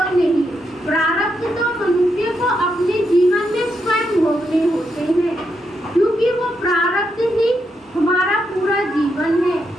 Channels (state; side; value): normal; both; correlation 0.82